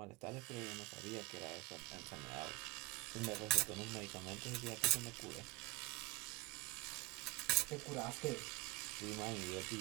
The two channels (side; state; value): left; quieter; 20.1 dB